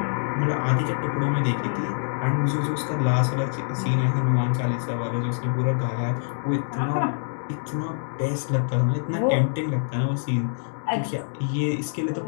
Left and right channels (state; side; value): silent; right; digital silence